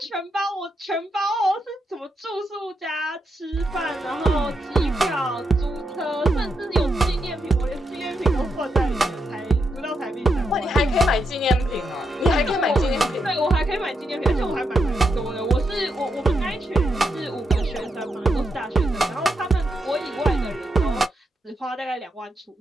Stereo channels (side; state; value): both; normal; correlation 0.82